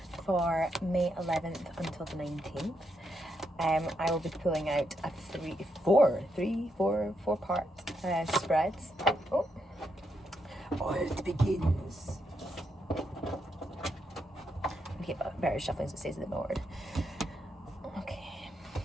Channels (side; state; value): both; normal; correlation 0.80